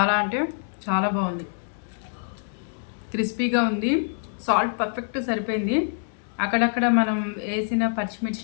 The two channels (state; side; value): silent; right; digital silence